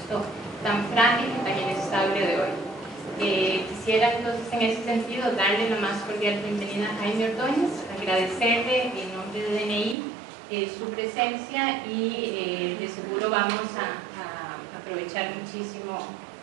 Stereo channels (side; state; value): left; drops out; at 10.0 s